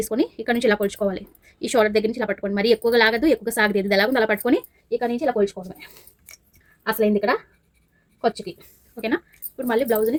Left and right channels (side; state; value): both; identical; correlation 1.00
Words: ఇక్కడ నుంచి ఇలా కొలుచుకోవాలి. ఈ షోల్డర్ దగ్గర నుంచి ఇలా పట్టుకోండి, మరి ఎక్కువగా లాగదు, ఎక్కువగా సాగలేదు, ఇది ఎలాగో అలా పట్టుకొని ఇక్కడ నుంచి ఇలా కొలుచుకోండి. అసలైంది ఇక్కడ ఖర్చుకి. ఓకేనా, ఇప్పుడు మళ్ళీ బ్లౌజ్ని